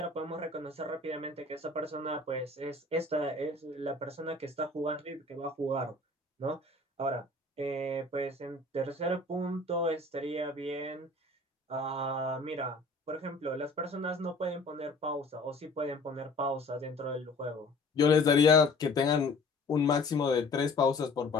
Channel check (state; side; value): quieter; right; 3.1 dB